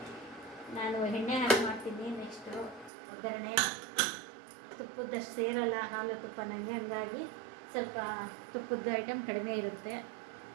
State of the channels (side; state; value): left; drops out; at 2.9 s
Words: ನಾನು ಎಣ್ಣೆ ಹಾಕಿ ಮಾಡ್ತೀನಿ. ನೆಕ್ಸ್ಟು ಒಗ್ಗರಣೆ ತುಪ್ಪದಷ್ಟು ಸೇರಲ್ಲ ಹಾಲು ತುಪ್ಪ ನನಗೆ, ಹಂಗಾಗಿ ಸ್ವಲ್ಪ ತುಪ್ಪದ ಐಟಮ್ ಕಡಿಮೆ ಇರುತ್ತೆ.